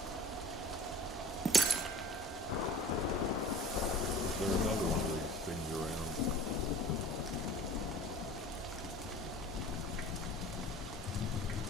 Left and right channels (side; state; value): both; normal; correlation 0.42